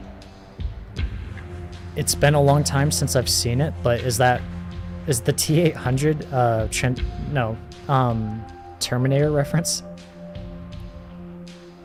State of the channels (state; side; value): identical; both; correlation 1.00